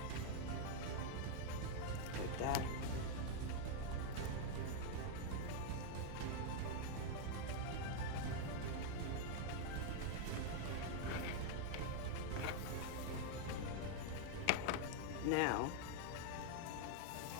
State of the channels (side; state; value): both; different; correlation 0.00